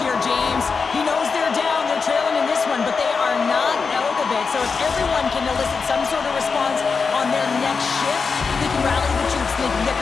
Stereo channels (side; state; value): right; quieter; 5.1 dB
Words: James. He knows they're down, they're trailing in this one, but they are not out of it. So if everyone can elicit some sort of response on their next shift, they can rally the troops and they can get